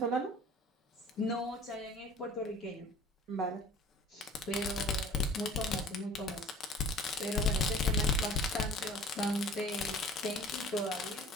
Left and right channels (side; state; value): both; normal; correlation 0.46